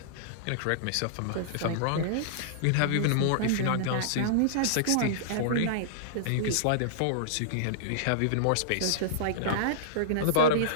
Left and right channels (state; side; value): different; both; correlation -0.02